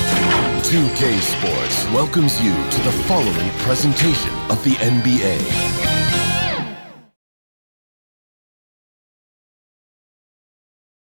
2K Sports welcomes you to the following presentation of the NBA.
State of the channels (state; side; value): inverted; both; correlation -1.00